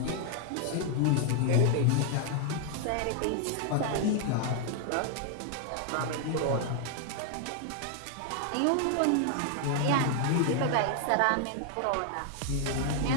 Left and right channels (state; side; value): different; both; correlation 0.00